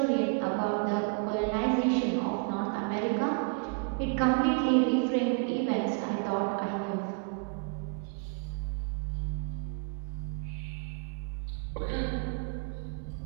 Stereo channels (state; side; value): quieter; left; 35.6 dB